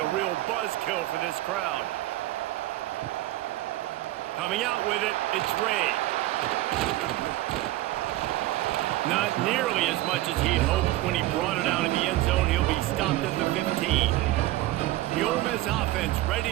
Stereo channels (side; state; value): left; quieter; 16.6 dB